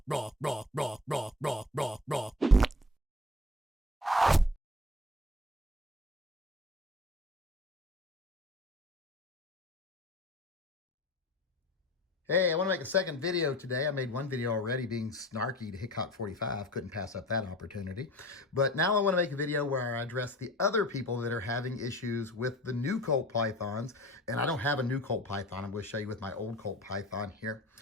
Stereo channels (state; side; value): normal; both; correlation 0.41